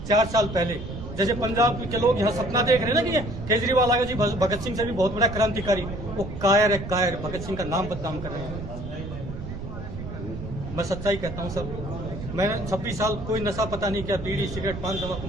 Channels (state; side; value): noise; right; rumble, 9 dB below the sound